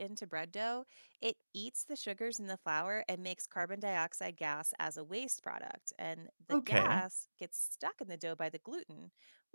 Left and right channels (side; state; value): both; inverted; correlation -1.00